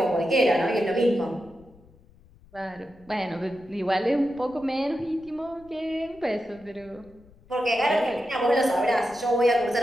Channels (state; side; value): noise; left; rumble, 26 dB below the sound